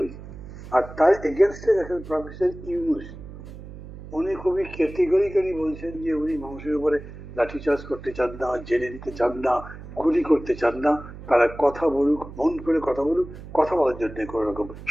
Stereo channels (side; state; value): right; noise; hum, 14 dB below the sound